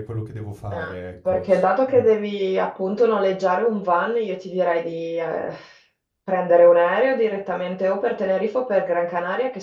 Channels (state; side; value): identical; both; correlation 1.00